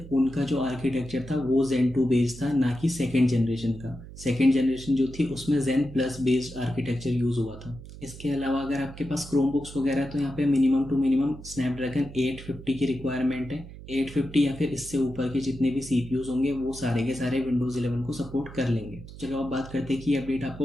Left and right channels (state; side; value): noise; right; hum, 15 dB below the sound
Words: उनका जो आर्किटेक्चर था वो Zen 2 बेस्ड था, ना कि 2nd जनरेशन का। 2nd जनरेशन जो थी उसमें Zen plus based architecture use हुआ था। इसके अलावा अगर आपके पास क्रोमबुक्स वगैरह तो यहाँ पे मिनिमम टू मिनिमम स्नैपड्रैगन 850 की रिक्वायरमेंट है। 850 या फिर इससे ऊपर के जितने भी सीपीयूज होंगे वो सारे के सारे विंडोज़ 11 को सपोर्ट कर लेंगे। चलो अब बात करते हैं कि ये अपडेट